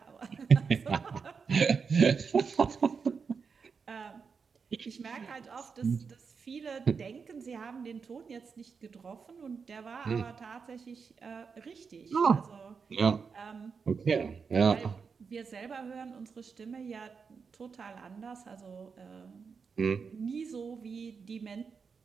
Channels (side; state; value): left; quieter; 5.6 dB